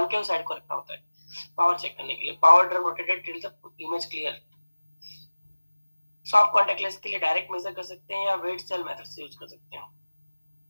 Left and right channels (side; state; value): both; inverted; correlation -1.00